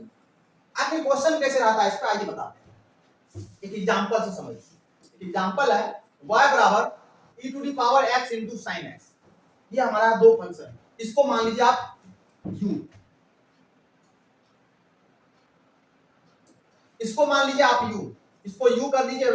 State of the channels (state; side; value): identical; both; correlation 1.00